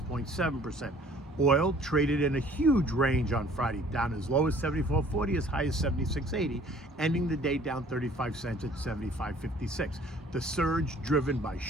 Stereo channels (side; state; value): both; normal; correlation 0.54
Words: Oil traded in a huge range on Friday, down as low as 74.40, as high as 76.80, ending the day down 35 cents at 75.56. The surge driven by